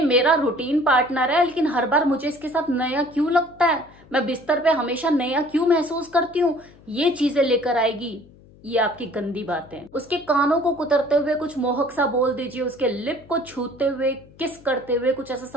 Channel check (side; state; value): left; noise; hum, 25 dB below the sound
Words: मेरा रूटीन पार्टनर है, लेकिन हर बार मुझे इसके साथ नया क्यों लगता है, मैं बिस्तर पे हमेशा नया क्यों महसूस करती हूँ। ये चीजें लेकर आएगी ये आपकी गंदी बातें। उसके कानों को कुतरते हुए कुछ मोहक सा बोल दीजिए, उसके लिप को छूते हुए, किस करते हुए कुछ ऐसा